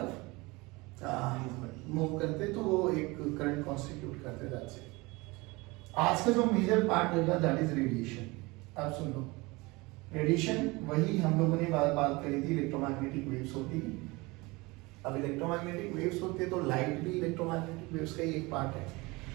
मूव करते तो वो एक करंट कॉन्स्टिट्यूट करते। That's it. आज का जो मेजर पार्ट होगा दैट इज रेडिएशन। अब सुन लो, रेडिएशन वही हम लोगों ने बात करी थी, इलेक्ट्रोमैग्नेटिक वेव्स होती है। अब इलेक्ट्रोमैग्नेटिक वेव्स होते हैं तो लाइट भी इलेक्ट्रोमैग्नेटिक वेव्स का ही एक पार्ट है।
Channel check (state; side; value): quieter; left; 23.9 dB